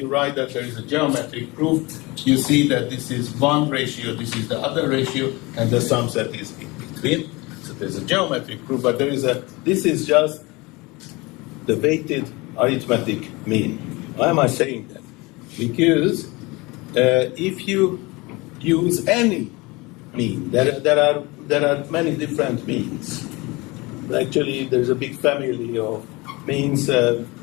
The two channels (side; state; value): right; quieter; 24.0 dB